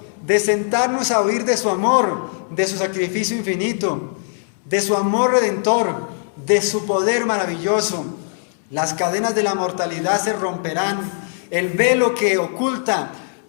de sentarnos a oír de su amor, de su sacrificio infinito, de su amor redentor, de su poder maravilloso. Las cadenas de la mortalidad se romperán, el velo que oculta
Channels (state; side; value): silent; right; digital silence